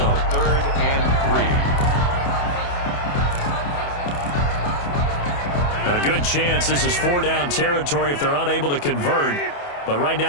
Third and 3. A good chance this is 4-down territory if they're unable to convert. But right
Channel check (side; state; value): right; late; 28 ms